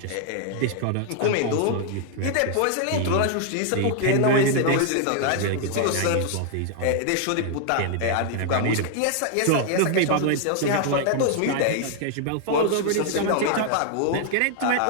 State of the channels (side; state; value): both; different; correlation 0.00